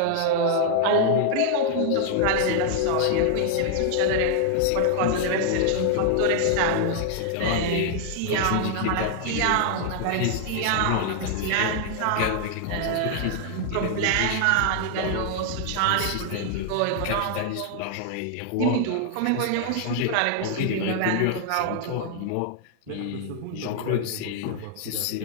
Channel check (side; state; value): both; different; correlation 0.00